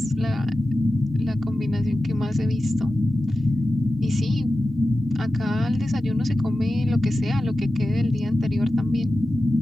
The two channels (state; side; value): normal; both; correlation 0.93